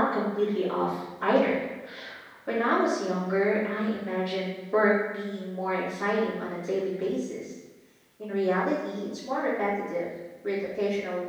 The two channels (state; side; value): identical; both; correlation 1.00